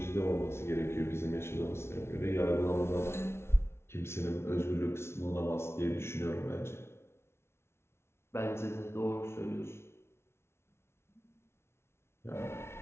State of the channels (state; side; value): late; right; 0.12 ms